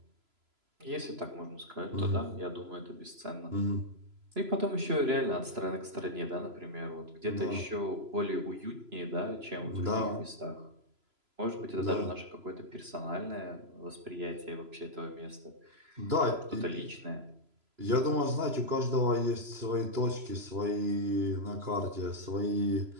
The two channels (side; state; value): left; late; 3.0 ms